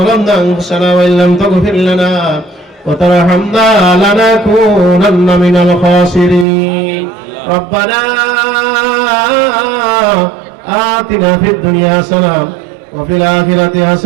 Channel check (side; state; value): left; drops out; at 6.5 s